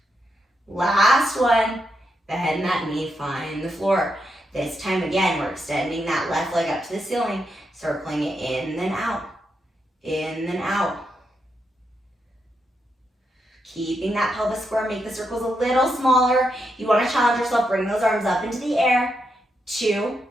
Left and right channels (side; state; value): both; normal; correlation 0.82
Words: Last one. Bend that knee, find the floor. This time again, we're extending that left leg up to the ceiling, circling it in, then out. In, then out. Keeping that pelvis square, make the circles a little smaller. You want to challenge yourself, bring those arms up into the air. 2,